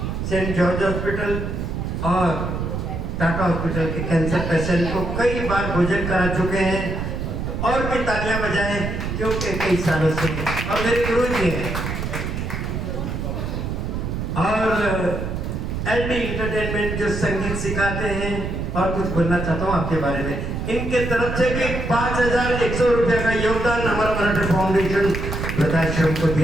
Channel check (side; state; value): right; noise; rumble, 3 dB below the sound